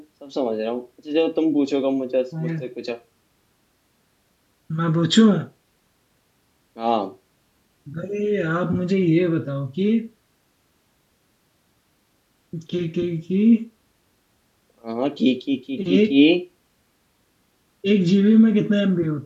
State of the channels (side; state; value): both; identical; correlation 1.00